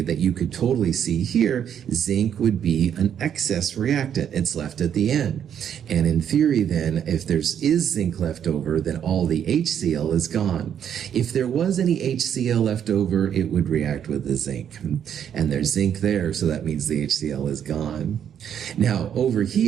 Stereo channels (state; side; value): quieter; left; 8.9 dB